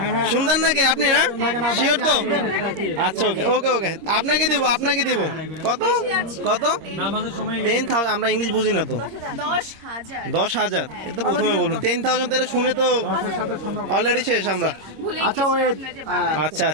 সুন্দর নাকি আপনি? না শিওর তো? আচ্ছা ওকে ওকে ওকে, আপনাকে দিব, আপনাকে দিব। কত কত? 10,000। আমরা ইংলিশ বুঝি না তো। 10,000 এটা তো প্রথমে বলুন। 10,000 তো শুনে তো অলরেডি শেষ আমরা। আচ্ছা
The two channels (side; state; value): left; late; 26 ms